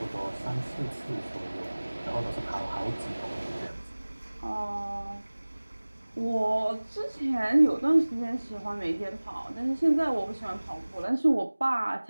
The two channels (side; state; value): both; inverted; correlation -1.00